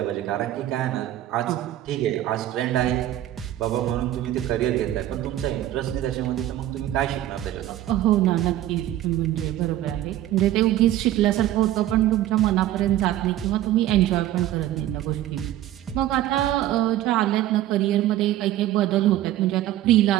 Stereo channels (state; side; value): quieter; left; 13.4 dB